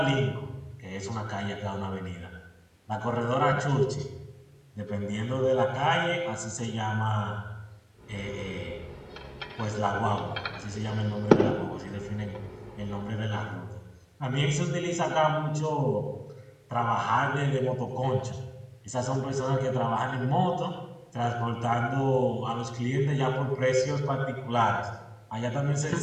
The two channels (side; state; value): both; identical; correlation 1.00